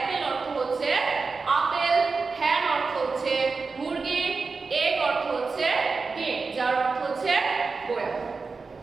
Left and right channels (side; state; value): left; quieter; 4.4 dB